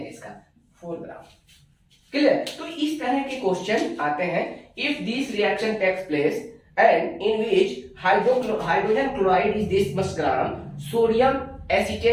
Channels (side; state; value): both; identical; correlation 1.00